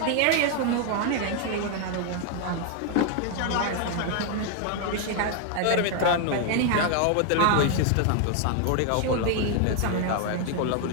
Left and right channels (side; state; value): both; different; correlation 0.00